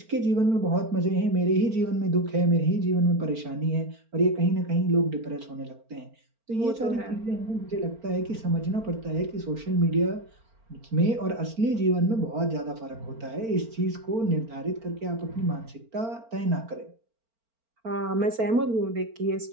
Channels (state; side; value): late; left; 4.4 ms